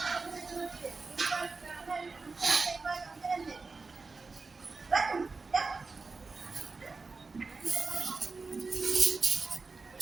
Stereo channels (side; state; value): left; quieter; 4.1 dB